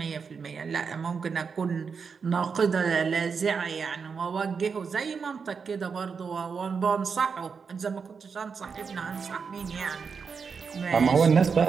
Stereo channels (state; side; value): quieter; left; 5.7 dB